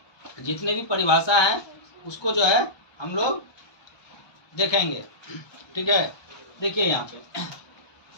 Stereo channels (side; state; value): right; late; 1.2 ms